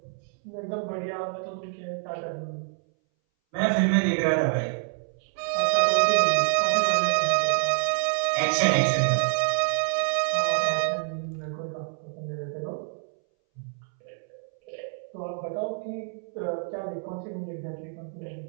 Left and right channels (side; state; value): left; silent; 60 dB below the other